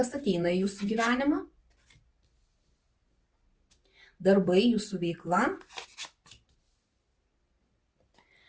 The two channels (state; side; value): identical; both; correlation 1.00